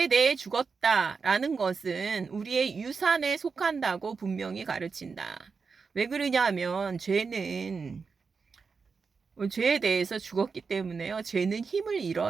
대해 죽었다라는 것은 우리의 유산에 속한다고 분명히 가르친다. 왜 그러냐면 죄는 죄에 대해서 죽었기 때문에요. 죄는 힘을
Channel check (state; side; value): quieter; left; 5.1 dB